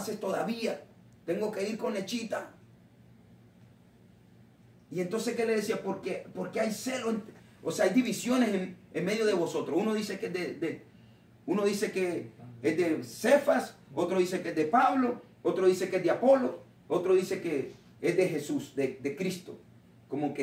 todavía. Tengo que ir con lechita. Y entonces, ¿qué le decía? Porque hay celo, o sea, hay divisiones en medio de vosotros. Uno dice que es de Cefas, otro dice que es de Pablo, otro dice que es de Apolo, otro dice que es de Jesús, de Cristo. Como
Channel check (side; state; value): both; identical; correlation 1.00